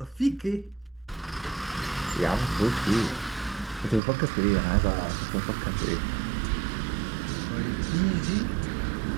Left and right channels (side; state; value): left; drops out; at 4.0 s